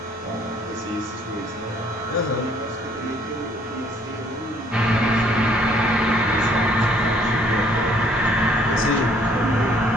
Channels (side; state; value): both; normal; correlation 0.62